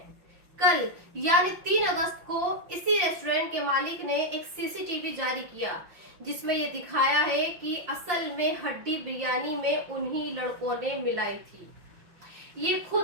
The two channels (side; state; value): left; late; 5.7 ms